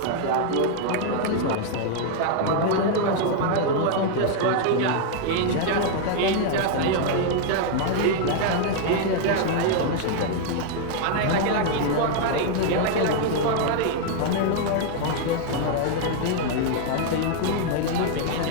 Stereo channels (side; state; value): both; different; correlation 0.00